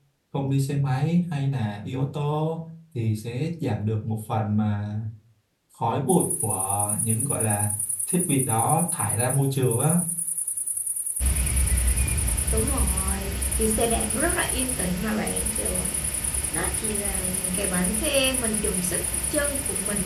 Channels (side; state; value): both; identical; correlation 1.00